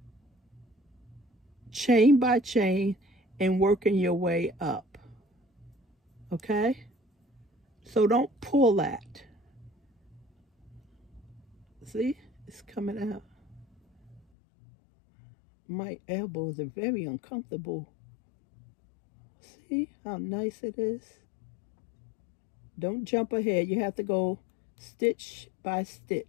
chain by chain and working your way up. Okay? So don't pull that. See? It's coming out. My elbows are very uncomfortable. See how nice it is? Don't jump ahead. You have to go stitch by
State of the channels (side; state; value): right; drops out; at 14.2 s